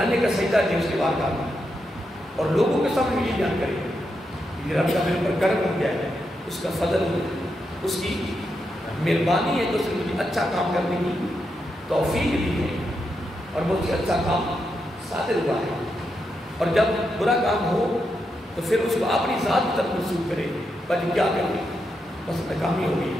کا سجدہ دیں اس کی بارگاہ میں، اور لوگوں کے سامنے یہ بیان کریں کہ یہ رب کا میرے پر کرم ہو گیا ہے، اس کا فضل ہو، اس کی مہربانی ہے کہ اس نے مجھے اچھا کام کرنے کی توفیق دی ہے اور مجھے اچھا کام صادر ہوا ہے. اور جب برا کام ہو تو پھر اس کو اپنی ذات کی طرف منسوخ کرے، بلکہ کیا کرے بس ناکامی ہو گئی،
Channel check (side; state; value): both; normal; correlation 0.84